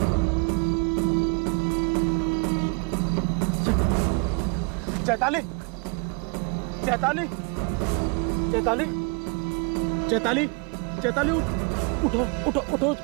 चैताली, चैताली, चैताली, चैताली, चैताली, उठो उठो उठो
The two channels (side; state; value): left; quieter; 33.6 dB